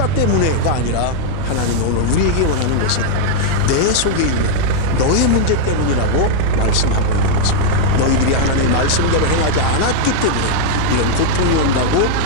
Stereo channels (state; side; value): different; both; correlation 0.00